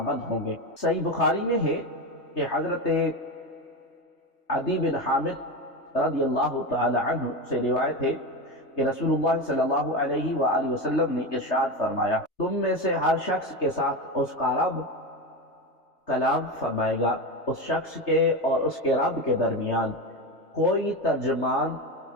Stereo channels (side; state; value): right; late; 3.3 ms